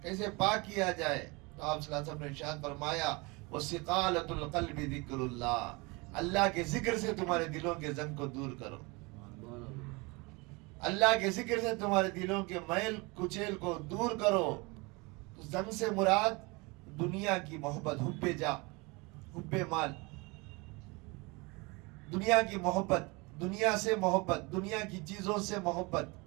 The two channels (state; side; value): quieter; left; 26.6 dB